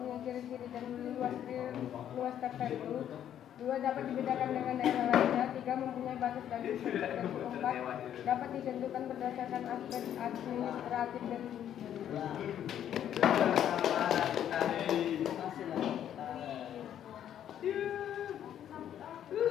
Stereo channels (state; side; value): quieter; right; 10.3 dB